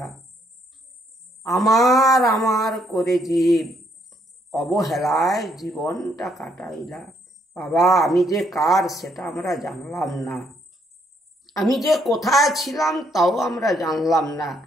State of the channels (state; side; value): normal; both; correlation 0.71